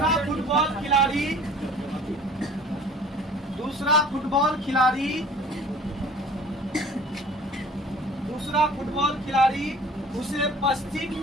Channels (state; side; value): normal; both; correlation 0.48